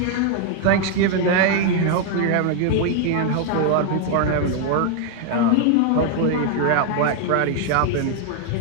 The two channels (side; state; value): both; different; correlation 0.01